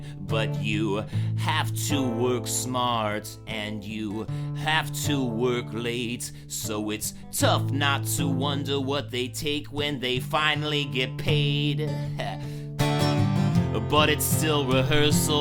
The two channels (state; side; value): identical; both; correlation 1.00